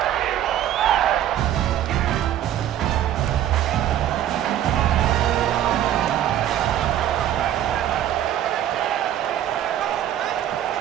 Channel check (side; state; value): left; quieter; 11.4 dB